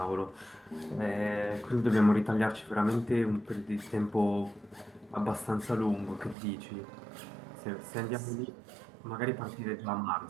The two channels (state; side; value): drops out; left; at 6.4 s